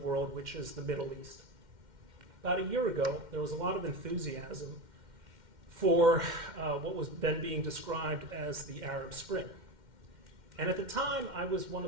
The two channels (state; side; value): late; left; 2.1 ms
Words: which is the Middle East. About a year ago, there was a lot of enthusiasm for what was then being described as the Arab Spring. And at the time, I was one